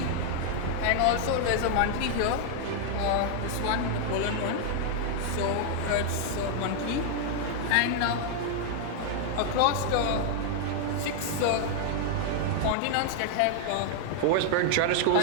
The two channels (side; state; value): both; different; correlation 0.00